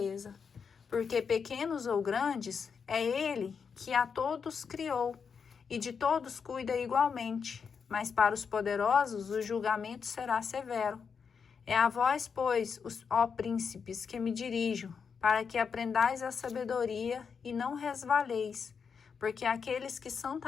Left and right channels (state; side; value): quieter; right; 6.1 dB